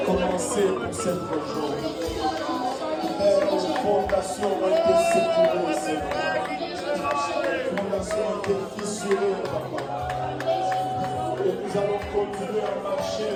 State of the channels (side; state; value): both; identical; correlation 1.00